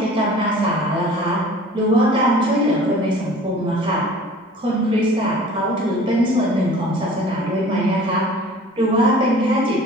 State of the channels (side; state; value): both; normal; correlation 0.46